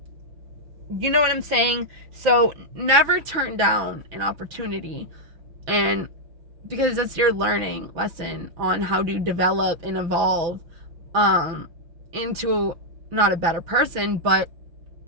you know what I'm saying? So never turn down an opportunity, and because that's your learning lesson on how to develop and evolve into not a better person, but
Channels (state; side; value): late; left; 6.0 ms